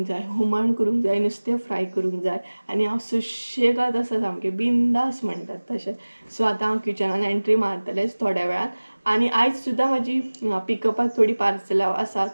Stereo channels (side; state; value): both; inverted; correlation -1.00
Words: जाय हुमण करूंक जाय नुस्तें फ्राय करूंक जाय आनी हांव सुशेगाद आसा सामकें बिंदास म्हणटात तशें सो आतां हांव किचनान एंट्री मारतलेंच थोड्या वेळान आनी आयज सुद्दां म्हाजी पिकअपाक थोडी पार्सलां आसा